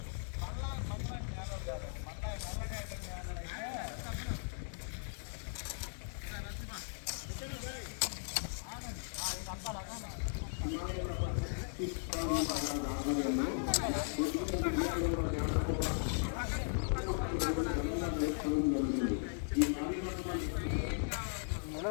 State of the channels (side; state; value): right; silent; digital silence